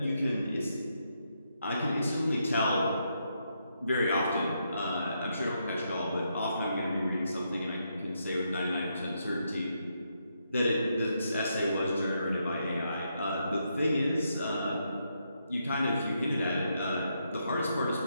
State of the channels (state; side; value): inverted; both; correlation -0.80